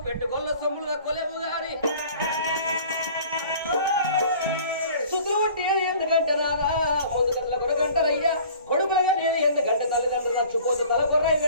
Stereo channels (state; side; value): inverted; both; correlation -0.48